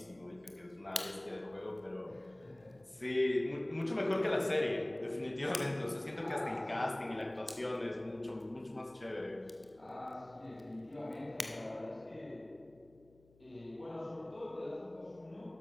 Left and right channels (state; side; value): noise; left; hum, 28 dB below the sound